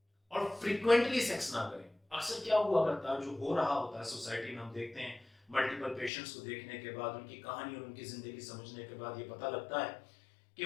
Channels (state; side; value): drops out; right; at 6.1 s